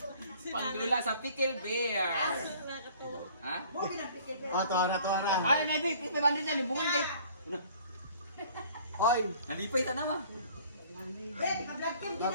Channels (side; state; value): both; inverted; correlation -0.53